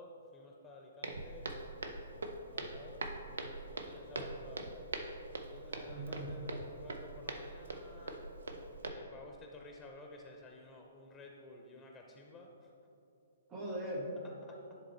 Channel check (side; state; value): both; inverted; correlation -0.57